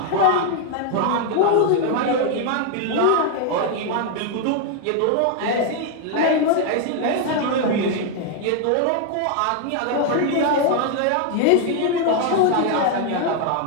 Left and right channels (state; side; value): different; both; correlation 0.00